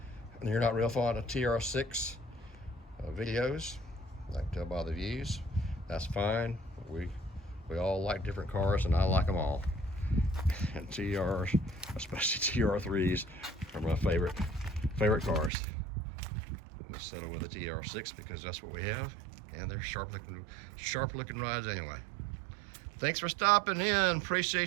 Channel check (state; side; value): drops out; left; at 15.5 s